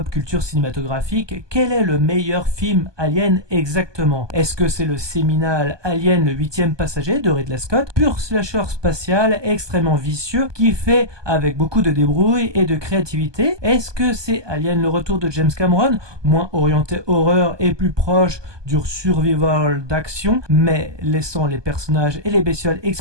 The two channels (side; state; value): left; late; 1.2 ms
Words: culture cinématographique. Quel est le meilleur film Alien exactement? Est-ce que c'est le séminal Alien le 8e passager de Ridley Scott, pur slasher spatial extrêmement vicieux qui fait avec beaucoup de débrouille et de créativité? Est-ce que c'est Alien le retour de James Cameron, moins orienté horreur et plus proche du survival d'action, mais laissant les personnages et les bestioles